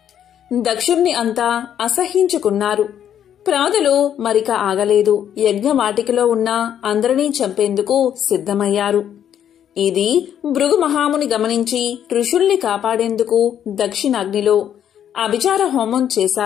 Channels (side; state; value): right; quieter; 9.7 dB